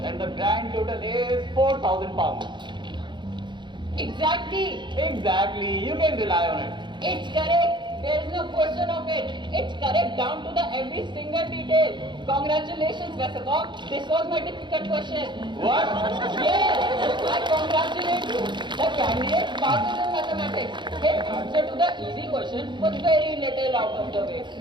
And the grand total is 4,000 pounds. Exactly. Exactly. You can rely on it. It's correct. There is no question of it. It's correct down to the every single detail. Congratulations, Westergaard. This was my difficult question. What? Yes, I congratulate you. The candidate passes in mathematics. His answer to the easy question was very little out of the way.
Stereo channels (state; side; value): late; left; 0.23 ms